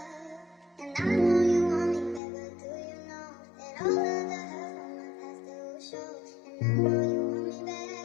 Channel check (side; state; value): right; drops out; at 2.2 s